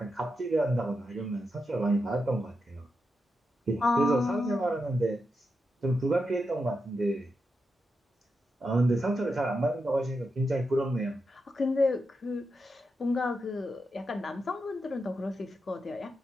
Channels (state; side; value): normal; both; correlation 0.87